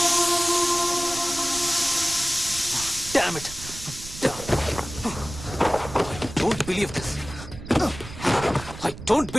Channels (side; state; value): right; noise; rumble, 13 dB below the sound